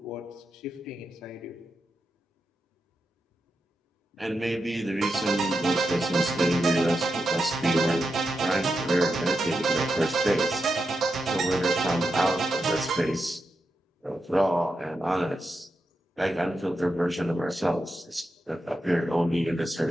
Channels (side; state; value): both; normal; correlation 0.87